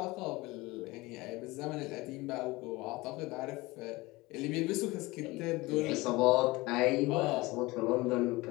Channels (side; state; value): right; quieter; 21.5 dB